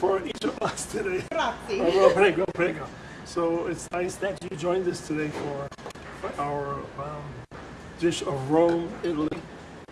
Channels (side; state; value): both; identical; correlation 1.00